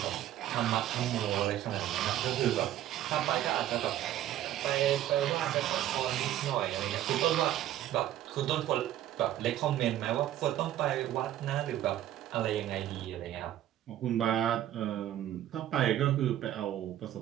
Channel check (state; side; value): quieter; left; 12.5 dB